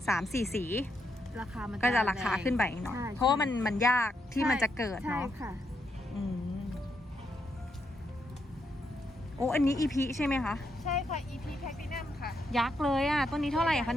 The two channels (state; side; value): normal; both; correlation 0.80